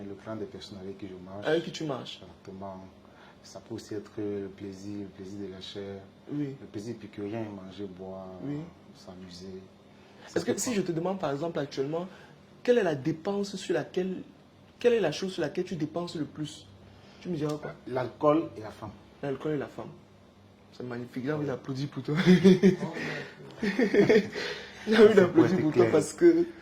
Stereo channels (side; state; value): both; identical; correlation 1.00